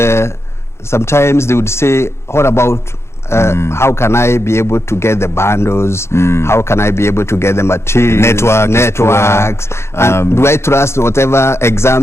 sometimes they would say, what about how can I be able to get the bundles? How can I be able to get the materials? Networks. And do I trust whatever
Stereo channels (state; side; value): late; right; 0.13 ms